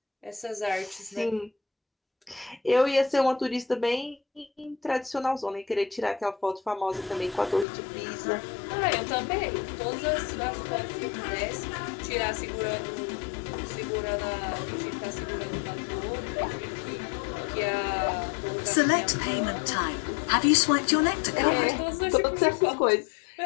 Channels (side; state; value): right; drops out; at 7.7 s